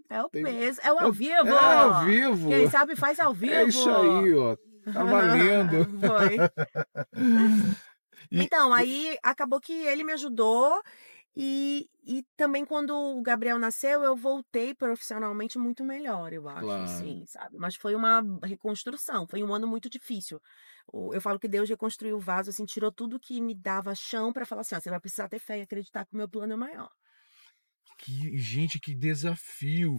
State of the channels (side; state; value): both; inverted; correlation -1.00